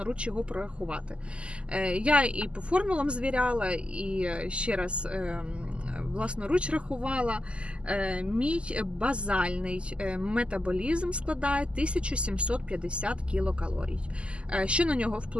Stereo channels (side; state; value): left; late; 0.053 ms